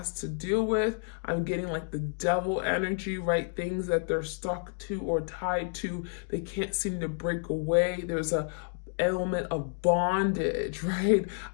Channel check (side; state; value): right; silent; 58 dB below the other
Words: to deal with. I'm getting like the devil energy, right? Things that they're stuck to or tied to. They can't seem to break away. There's a element of bondage, right?